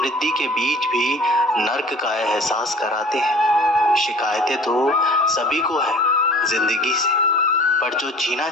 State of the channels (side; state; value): both; normal; correlation 0.47